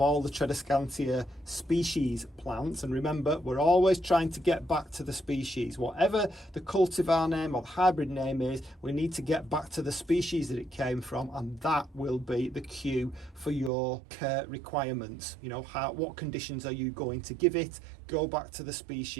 the Tradescantia species plants, and remember, we're always trying to get back to the species. Whatever the cultivar name or the hybrid name is, we need to get back to the species that it came from, and that will be the cue for your care requirements. You know, what conditions are you going to give it? Go back to the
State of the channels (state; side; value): drops out; left; at 13.7 s